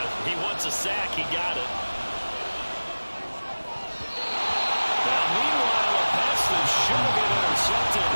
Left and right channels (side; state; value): both; inverted; correlation -1.00